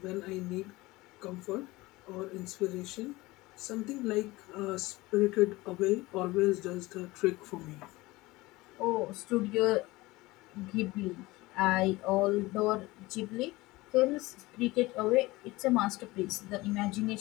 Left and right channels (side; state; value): right; quieter; 20.5 dB